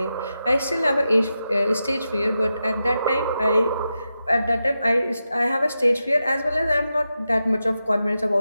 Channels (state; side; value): inverted; both; correlation -0.89